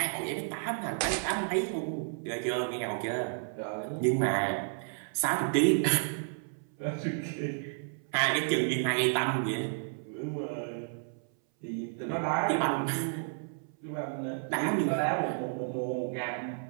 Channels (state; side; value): silent; left; 57 dB below the other